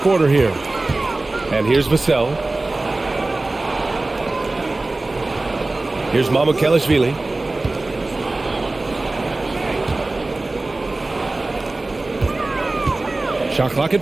here. And here's Vassell. Here's Mamukelashvili. Shot clock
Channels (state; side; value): quieter; left; 3.0 dB